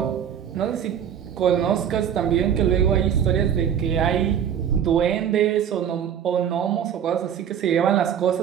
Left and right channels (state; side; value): quieter; left; 8.9 dB